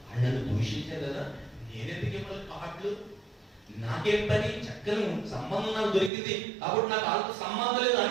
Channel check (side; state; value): left; drops out; at 6.1 s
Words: వాళ్ళని దూషించారు కదా, నేనెందుకు ఇవ్వాలి కార్డులు, నాకేం పని, చక్కని సంబంధం నాకు దొరికింది కాబట్టి నాకు వాళ్ళతో సంబంధం లేదు